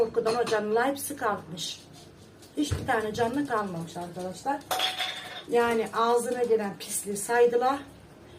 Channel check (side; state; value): both; identical; correlation 1.00